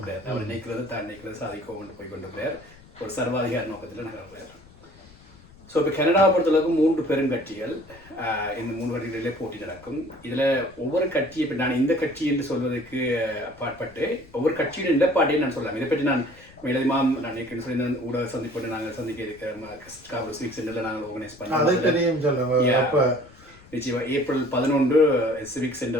போகிறார். அவர் நினைக்கிறது தான் நினைக்கிறது சாதிக்க கொண்டு போய் கொண்டு போகிறார். ஒரு சர்வாதிகார நோக்கத்தில் நகர்றார். ஸோ இப்போ கனடாவை பொறுத்தளவுக்கு 3 பெருங்கட்சிகள் இந்த 3 வருடங்களிலே போட்டி நடக்கும். இதில் ஒவ்வொரு கட்சி, இப்போ நான் இந்த கட்சி என்று சொல்வதற்கு அப்பாற்பட்டு ஒவ்வொரு கட்சியின் நிலப்பாட்டையும் நான் சொல்லலாம். இதை பற்றி நான் மேலதிகமாக நான் ஏற்கனவே சொல்லி ஊடக சந்திப்போடு நாங்கள் சந்திக்க இருக்கிற சிவிக் சென்டரில் நாங்கள் ஆர்கனைஸ் பண்ணோம். நிச்சயமாக ஏப்ரல் 11 சிவிக்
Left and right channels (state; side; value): noise; left; rumble, 24 dB below the sound